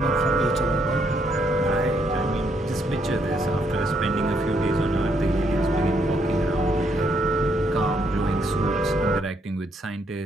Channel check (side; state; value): both; normal; correlation 0.73